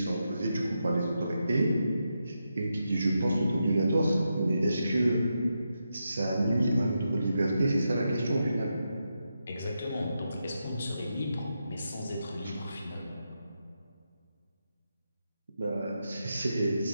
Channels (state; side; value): inverted; both; correlation -0.86